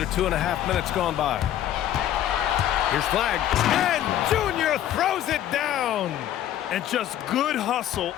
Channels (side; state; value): right; quieter; 11.8 dB